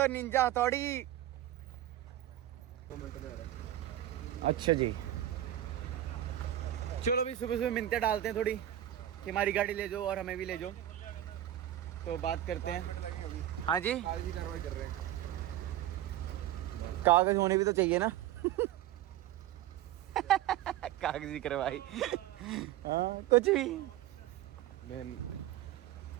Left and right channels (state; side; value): quieter; left; 12.9 dB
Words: निंजा हथौड़ी। अच्छा जी, चलो भी सुबह सुबह मिन्नतें डालते हैं थोड़ी कि हमारी गाड़ी ले जाओ और हमें भी ले जाओ। तो बात करते हैं। हाँ जी, कागजी कार्रवाई कर रहे हैं। कागज होने भी तो चाहिए ना। कागजी कार्रवाई। हाँ, कुछ भी।